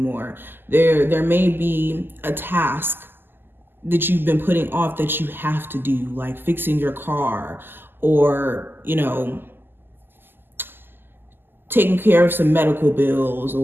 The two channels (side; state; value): left; late; 0.097 ms